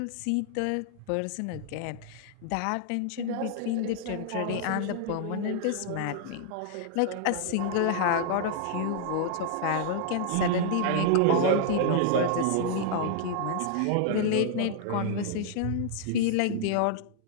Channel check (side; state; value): both; different; correlation -0.01